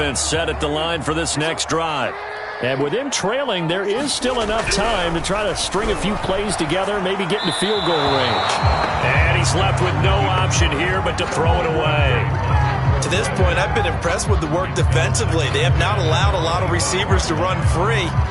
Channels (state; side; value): identical; both; correlation 1.00